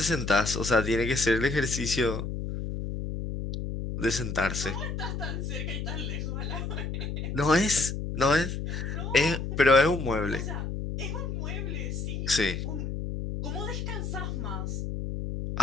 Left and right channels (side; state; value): left; noise; hum, 4 dB below the sound